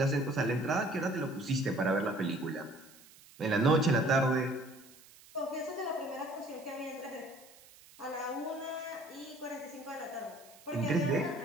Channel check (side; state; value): right; noise; hiss, 23 dB below the sound